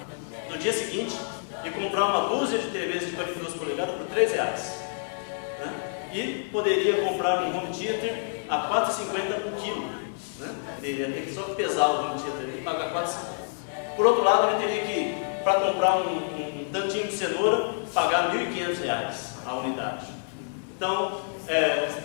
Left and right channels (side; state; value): right; silent; digital silence